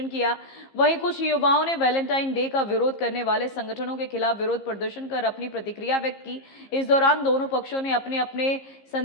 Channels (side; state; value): right; late; 15 ms